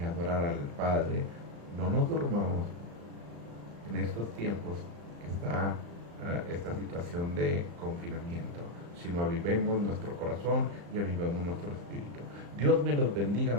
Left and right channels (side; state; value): left; late; 35 ms